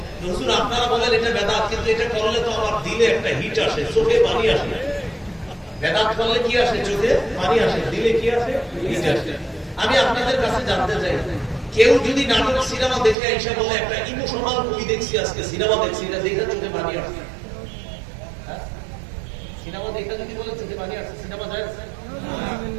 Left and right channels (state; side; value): drops out; left; at 13.2 s